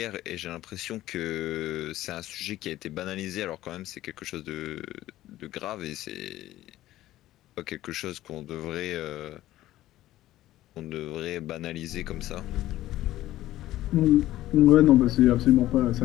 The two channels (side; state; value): right; quieter; 14.9 dB